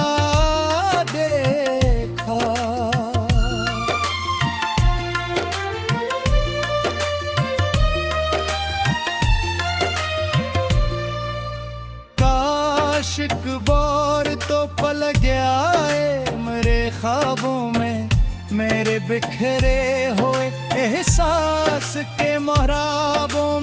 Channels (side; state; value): both; identical; correlation 1.00